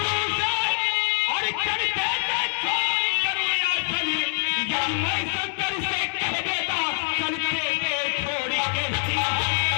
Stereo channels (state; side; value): silent; right; digital silence